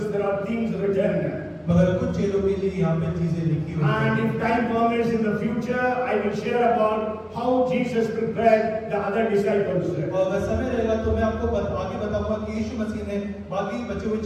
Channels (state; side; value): identical; both; correlation 1.00